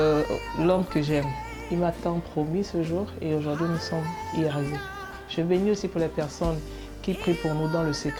l'homme que j'aime. Il m'a tant promis ce jour et aujourd'hui, nous sommes y arrivés. Je bénis aussi pour les personnes qui prient pour nous dans le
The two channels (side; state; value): both; identical; correlation 1.00